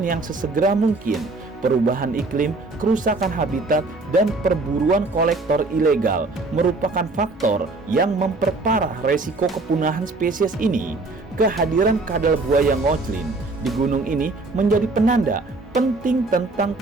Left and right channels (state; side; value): quieter; left; 3.3 dB